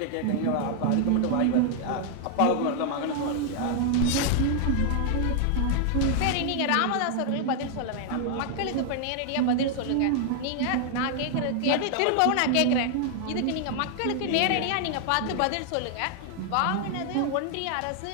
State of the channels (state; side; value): different; both; correlation 0.00